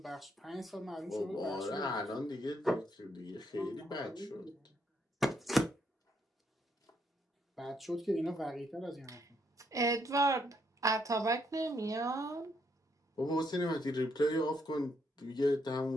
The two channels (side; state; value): both; normal; correlation 0.74